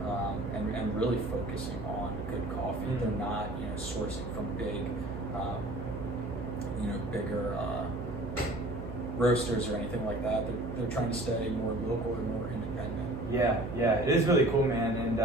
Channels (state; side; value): noise; right; hum, 8 dB below the sound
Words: and really focusing on good coffee. They're not, sourcing from big, bigger roasters or anything like that. They're trying to stay more local and more independent. Yeah, it is really cool, man. And